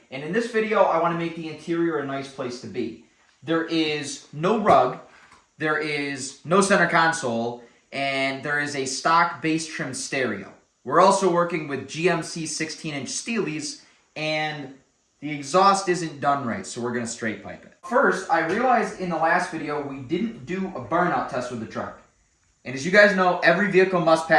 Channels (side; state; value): both; identical; correlation 1.00